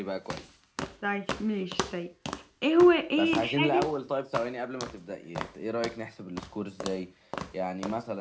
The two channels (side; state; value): both; identical; correlation 1.00